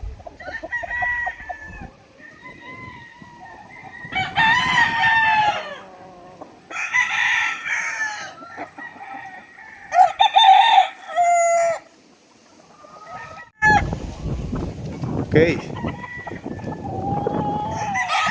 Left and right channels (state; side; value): identical; both; correlation 1.00